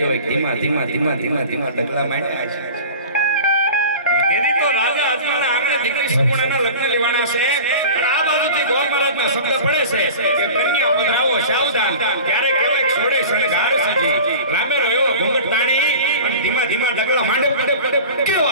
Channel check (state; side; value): inverted; both; correlation -0.37